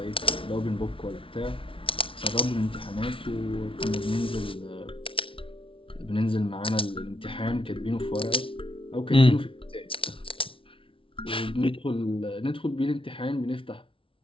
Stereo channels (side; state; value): right; late; 0.25 ms